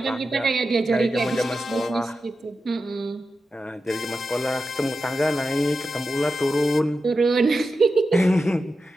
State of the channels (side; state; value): both; normal; correlation 0.91